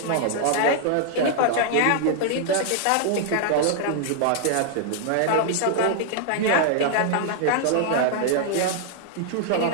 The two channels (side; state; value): both; different; correlation 0.00